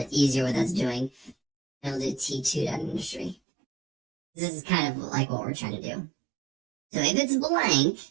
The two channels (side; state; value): left; drops out; at 3.4 s